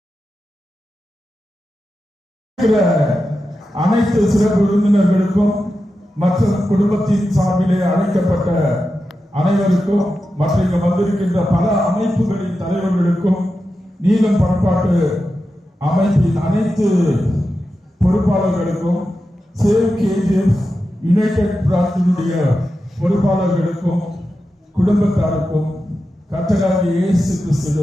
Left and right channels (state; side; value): normal; both; correlation 0.91